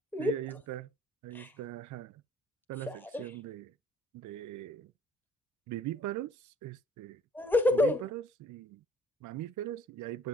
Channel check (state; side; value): normal; both; correlation 0.56